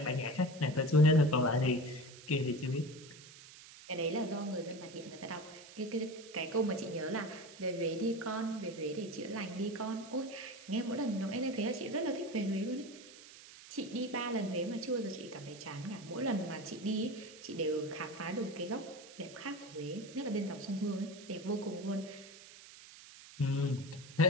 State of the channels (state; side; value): noise; right; hiss, 18 dB below the sound